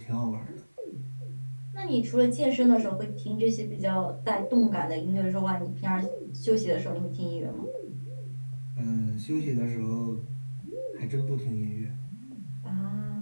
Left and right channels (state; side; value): inverted; both; correlation -1.00